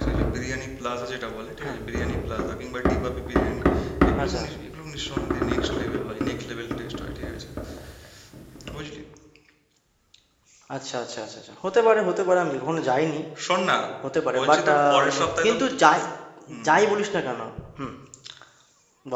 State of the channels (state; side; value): identical; both; correlation 1.00